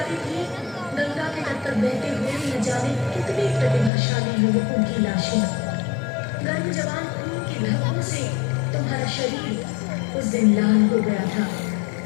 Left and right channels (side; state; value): right; drops out; at 3.9 s